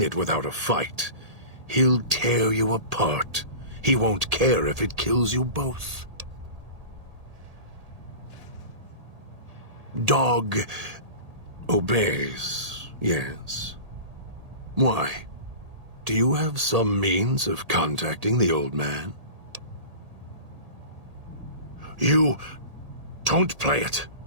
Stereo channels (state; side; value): late; left; 1.8 ms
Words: it without a fight. He'll tear you apart. He won't care if it kills you both. Dog obeys, yes. Why? Do you have some means of contacting the old man? You don't play it.